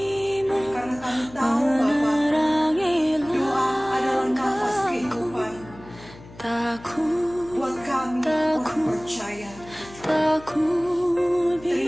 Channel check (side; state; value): left; noise; hum, 20 dB below the sound